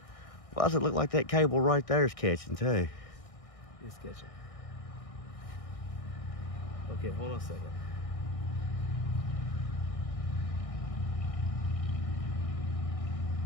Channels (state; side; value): late; right; 1.6 ms